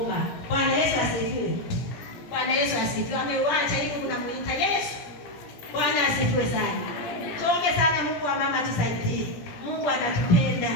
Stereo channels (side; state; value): right; late; 17 ms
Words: Bwana Yesu asifiwe. Bwana Yesu asifiwe. Ameuacha ili unamuita Yesu. Bwana asifiwe sana. Tuombe sana Mungu wa mama tusaidie. Mungu anatupenda.